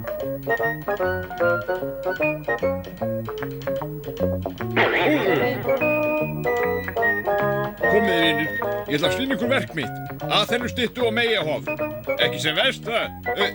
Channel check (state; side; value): identical; both; correlation 1.00